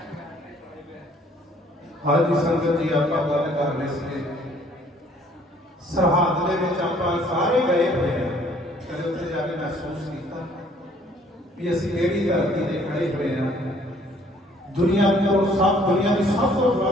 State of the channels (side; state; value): both; normal; correlation 0.60